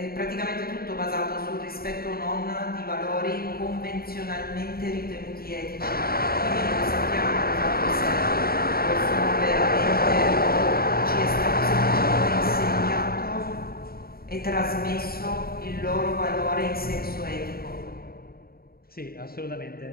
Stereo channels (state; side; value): late; right; 0.44 ms